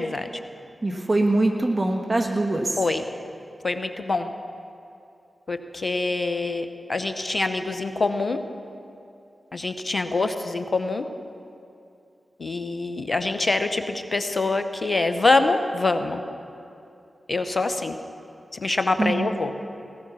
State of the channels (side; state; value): both; normal; correlation 0.93